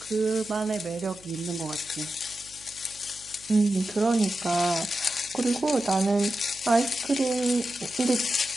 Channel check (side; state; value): right; noise; hum, 25 dB below the sound